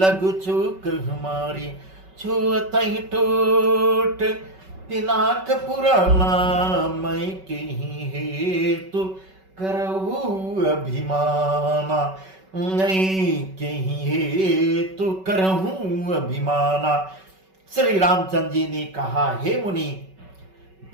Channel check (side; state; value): left; late; 5.3 ms